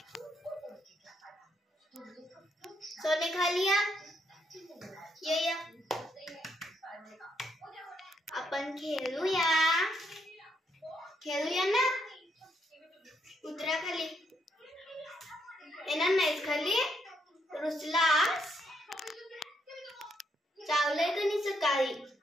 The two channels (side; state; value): both; normal; correlation 0.76